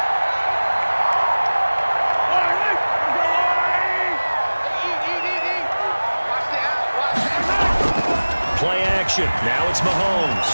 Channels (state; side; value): inverted; both; correlation -1.00